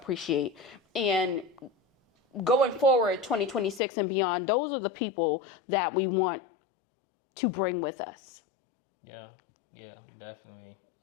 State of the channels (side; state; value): right; drops out; at 3.8 s